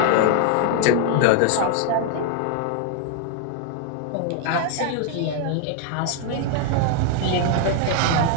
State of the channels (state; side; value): different; both; correlation 0.00